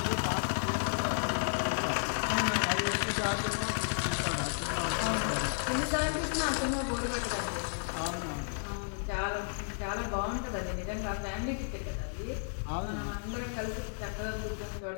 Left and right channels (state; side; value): silent; right; 56 dB below the other